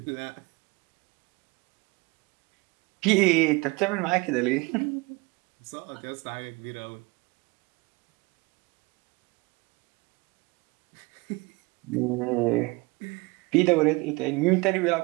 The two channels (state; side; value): quieter; left; 25.0 dB